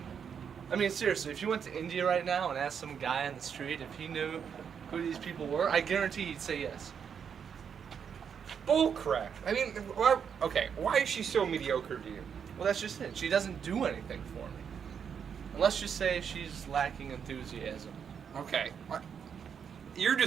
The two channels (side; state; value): left; quieter; 7.3 dB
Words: I mean, seriously, if you went to India right now and asked some guy on the street if he knew who these people were, I guarantee he'd say yes. Bullcrap. I mean, why is she so mediocre to you? Well, that's just it. She doesn't do anything for me. And let's just say she's lacking enthusiasm. Okay. You're